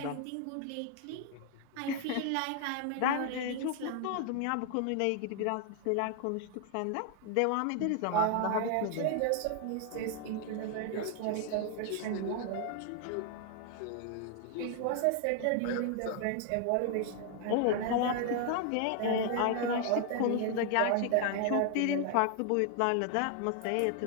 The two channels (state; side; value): different; both; correlation 0.00